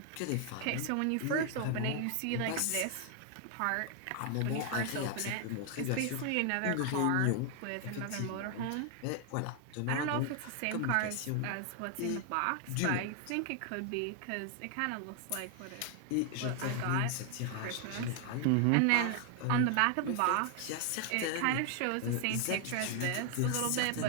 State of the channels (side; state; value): both; different; correlation 0.00